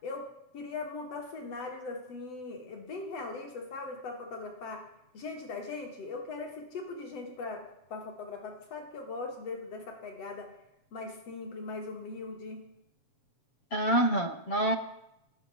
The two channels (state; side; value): late; right; 7.9 ms